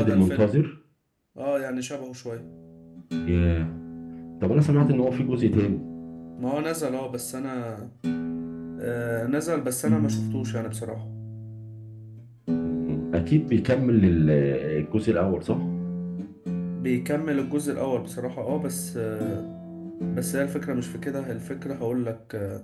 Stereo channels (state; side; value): identical; both; correlation 1.00